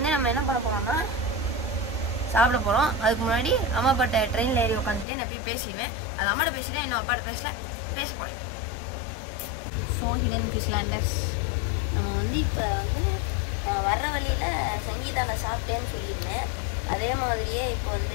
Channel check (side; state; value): right; drops out; at 5.1 s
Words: நம்ம என்ன பண்ண போகிறோம்னா சாப்பிட போகிறோம். அதுக்கு முன்னாடி அம்மா அப்பாட்ட ட்ரெயினில் ஏறி உட்காந்துட்டு நான் போய் பேசிடுவேன். அது அம்மாட்ட பேசிட்டேன், இன்னும் அப்பாட்ட பேச போகிறேன். ஸோ ஹிடன் ஃபிஷ்லேண்டர்ஸ், நம்ம வந்து இப்போ வந்து வர்ற வழியில் சங்கீதாவில் சாப்பிட்டேன்னு சொல்லியிருந்தேன். அதே மாதிரியே இப்போ